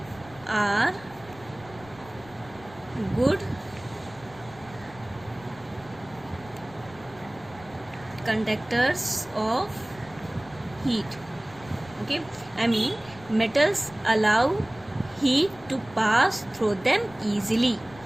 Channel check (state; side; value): noise; left; rumble, 21 dB below the sound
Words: are good conductors of heat. Okay, I mean metals allow heat to pass through them easily.